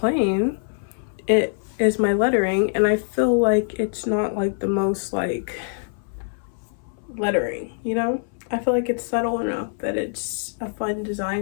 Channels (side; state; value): right; silent; 61 dB below the other